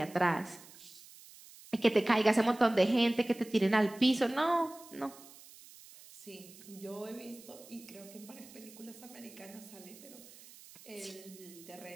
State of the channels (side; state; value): right; noise; hiss, 20 dB below the sound